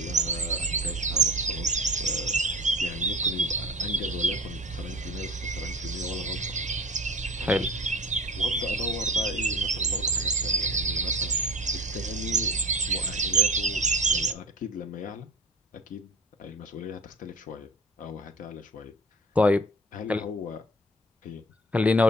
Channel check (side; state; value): both; normal; correlation 0.38